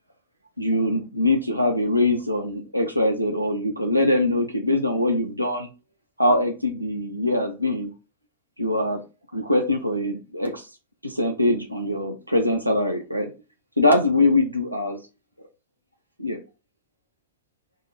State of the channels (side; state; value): both; inverted; correlation -0.68